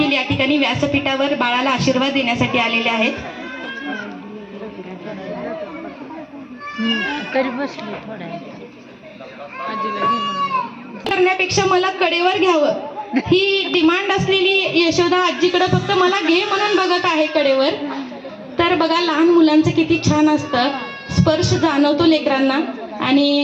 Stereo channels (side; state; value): both; identical; correlation 1.00